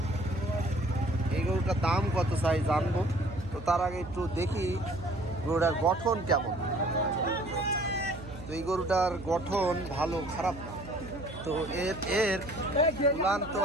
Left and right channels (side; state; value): right; noise; hum, 14 dB below the sound